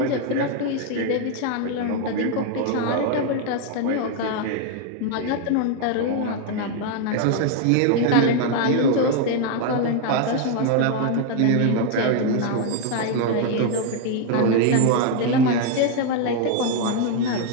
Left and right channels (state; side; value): different; both; correlation 0.01